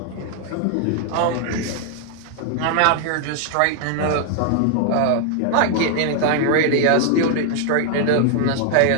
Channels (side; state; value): both; different; correlation 0.00